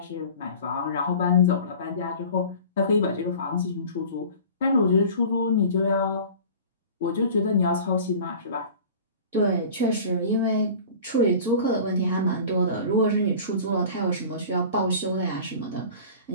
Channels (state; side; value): inverted; both; correlation -0.40